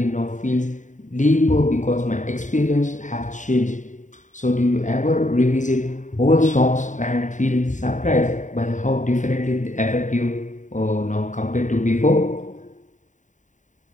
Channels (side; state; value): right; late; 0.36 ms